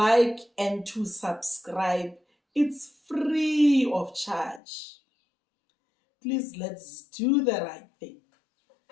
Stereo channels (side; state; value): right; drops out; at 4.6 s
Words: and to subscribe, it's free of charge. Please, let's do the right thing.